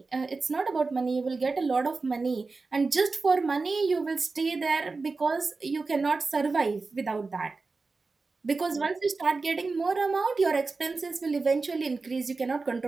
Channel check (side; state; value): left; quieter; 4.0 dB